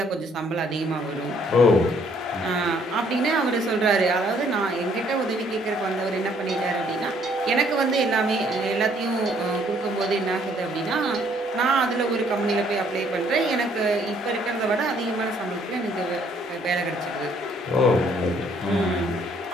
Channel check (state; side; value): normal; both; correlation 0.64